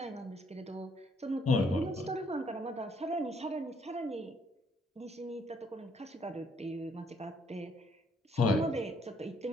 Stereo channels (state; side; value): normal; both; correlation 0.68